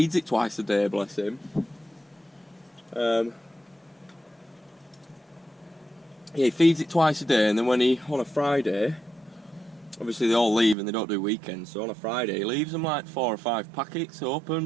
it twice a day, bless him. Yeah, he feeds it twice a day, and then on a Friday, obviously they all leave and they don't do weekends, so on a Friday he leaves them like 4 or 5 packets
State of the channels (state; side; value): drops out; left; at 10.8 s